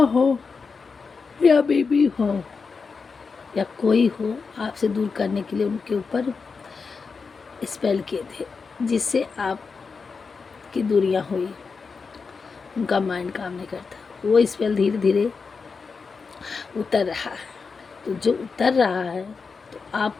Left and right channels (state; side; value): quieter; right; 5.0 dB